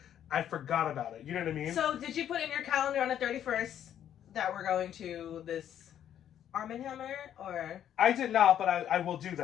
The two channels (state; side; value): quieter; right; 10.2 dB